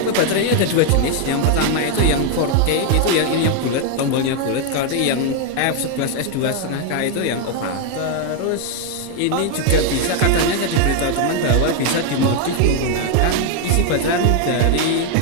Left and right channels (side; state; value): both; different; correlation 0.00